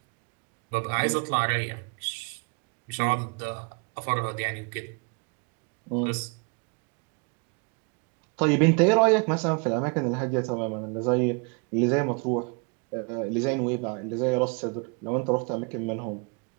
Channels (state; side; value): quieter; left; 34.7 dB